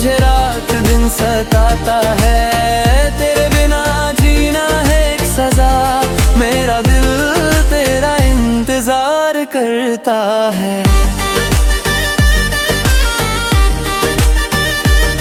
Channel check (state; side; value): identical; both; correlation 1.00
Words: रात दिन सताता है। तेरे बिना जीना है एक सजा, मेरा दिल तेरा इंतजार करता है।